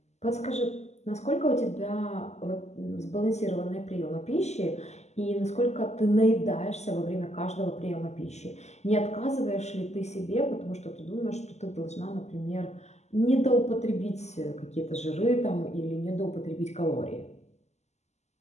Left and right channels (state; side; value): late; right; 0.33 ms